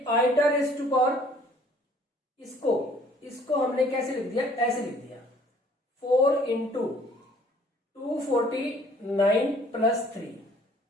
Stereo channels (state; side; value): normal; both; correlation 0.57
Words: आइटा रेस्ट टू पावर, इसको हमने कैसे लिख दिया, ऐसे लिख दिया 4 इंटू 249 प्लस 3।